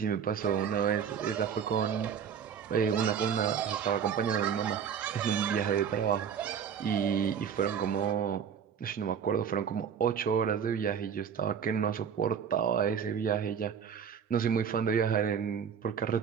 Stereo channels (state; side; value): quieter; left; 7.6 dB